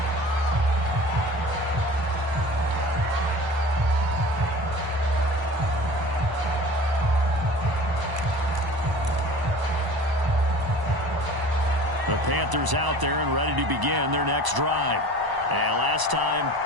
The Panthers out there and ready to begin their next drive. And last time,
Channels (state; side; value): late; left; 1.0 ms